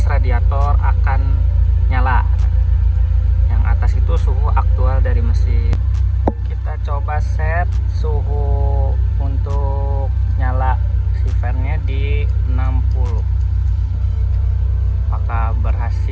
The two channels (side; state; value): both; identical; correlation 1.00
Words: radiator akan nyala. Yang atas itu suhu aktual dari mesin. Kita coba set suhu untuk nyala si fan-nya di 60. Apakah